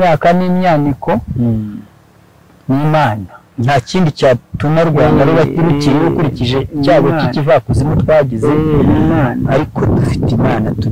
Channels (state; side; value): identical; both; correlation 1.00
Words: n'imyaniko n'Imana. Nta kindi cyatuma Rwanda ruba rukiriho ukurikije icyago cy'ikivakuzimu twagize, ariko dufite Imana,